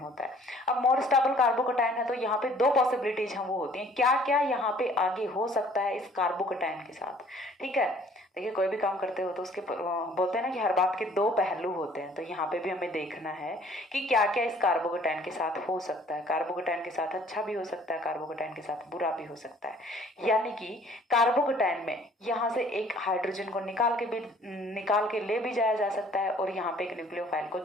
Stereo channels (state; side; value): normal; both; correlation 0.56